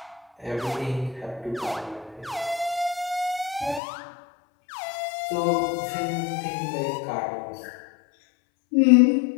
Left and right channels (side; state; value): right; drops out; at 3.8 s